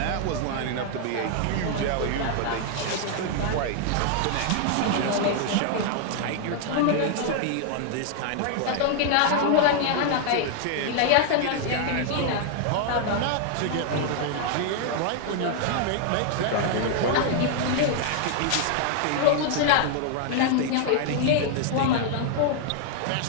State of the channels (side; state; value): both; different; correlation 0.00